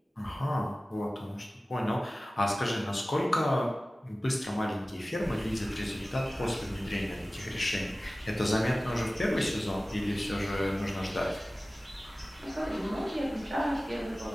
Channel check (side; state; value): both; normal; correlation 0.97